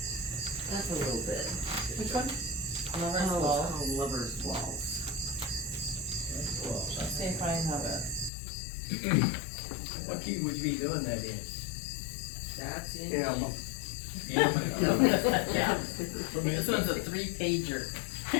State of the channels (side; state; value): right; drops out; at 8.3 s